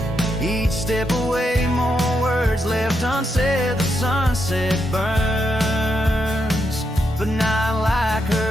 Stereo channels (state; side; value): normal; both; correlation 0.82